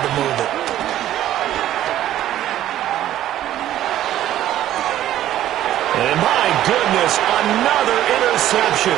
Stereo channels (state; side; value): quieter; left; 12.8 dB